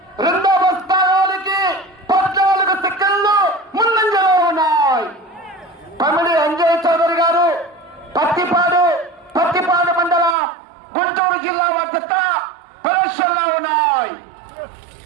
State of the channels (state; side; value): drops out; left; at 10.4 s